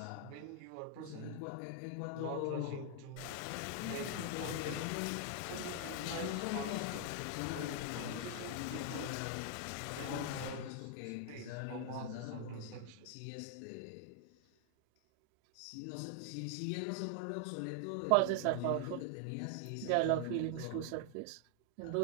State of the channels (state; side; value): different; both; correlation 0.00